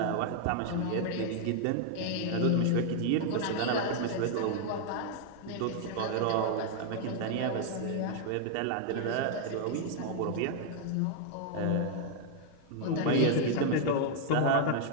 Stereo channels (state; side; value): different; both; correlation 0.00